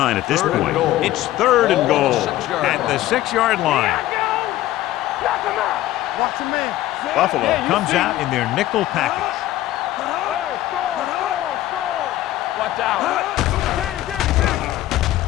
at this point. It's third and goal at the 6-yard line. Knock him out. Watch him in. Buffalo comes out in their nickel package. Hey, score. Watch out. Danny.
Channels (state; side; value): quieter; right; 14.8 dB